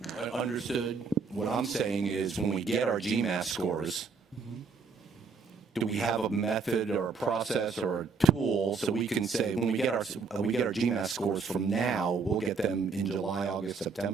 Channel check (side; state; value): left; quieter; 5.1 dB